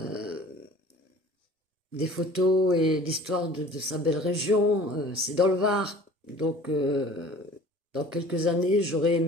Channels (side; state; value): both; normal; correlation 0.46